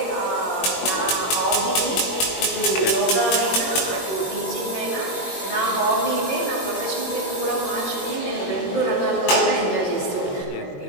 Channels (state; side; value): late; right; 21 ms